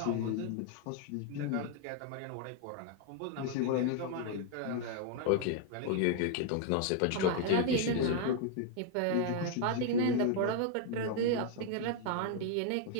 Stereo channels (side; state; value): both; different; correlation 0.00